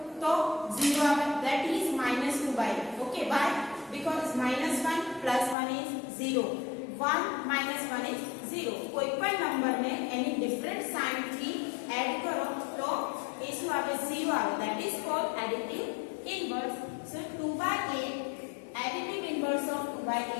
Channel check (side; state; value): right; drops out; at 5.6 s